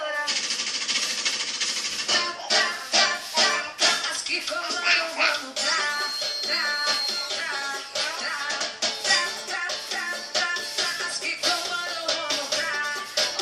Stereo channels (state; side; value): identical; both; correlation 1.00